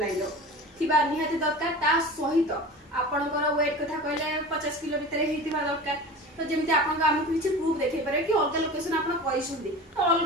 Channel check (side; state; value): both; normal; correlation 0.35